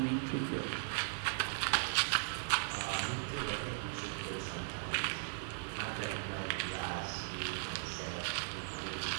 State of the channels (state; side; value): silent; left; digital silence